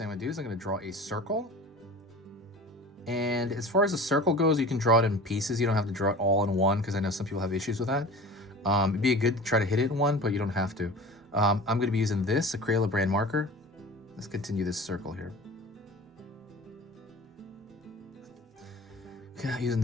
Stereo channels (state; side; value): normal; both; correlation 0.38